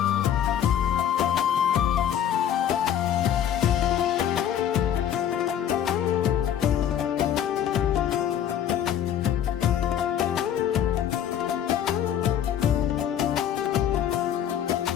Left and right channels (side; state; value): right; quieter; 9.8 dB